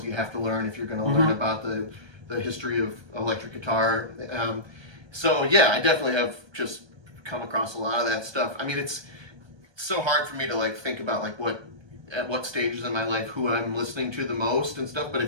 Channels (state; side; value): late; left; 1.2 ms